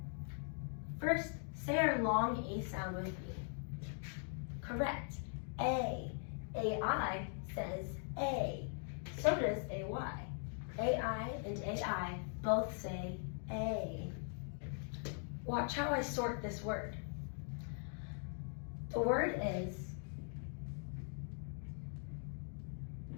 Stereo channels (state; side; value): silent; right; 50 dB below the other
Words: First, say our long A sound with me. Correct. A. A-I says A. So does A-Y. A-I and A-I both say A. Watch how I sort this word. The word is